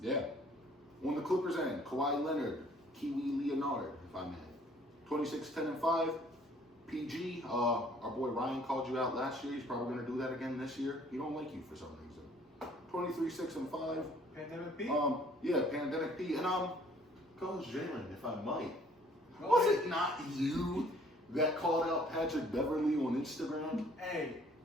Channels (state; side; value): normal; both; correlation 0.58